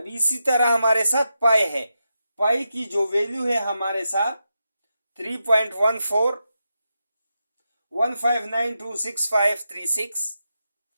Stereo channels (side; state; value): both; inverted; correlation -0.87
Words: इसी तरह हमारे साथ पाई है, पाई की जो वैल्यू है हमारे साथ 3.14 1592656,